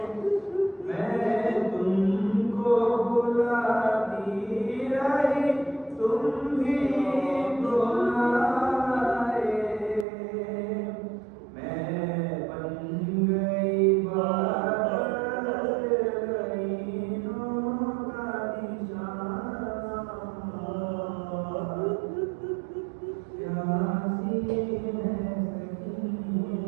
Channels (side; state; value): left; drops out; at 10.1 s